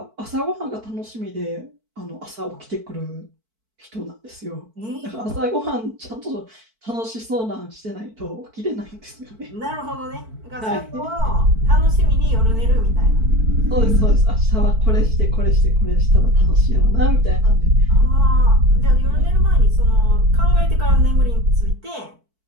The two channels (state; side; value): late; left; 4.5 ms